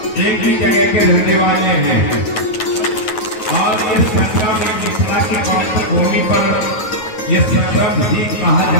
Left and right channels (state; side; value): late; right; 9.3 ms